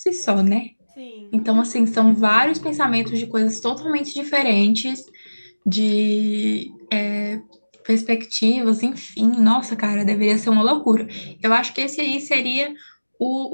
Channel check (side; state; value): both; inverted; correlation -1.00